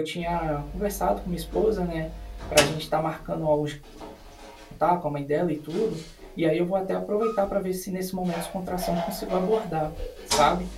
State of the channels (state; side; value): identical; both; correlation 1.00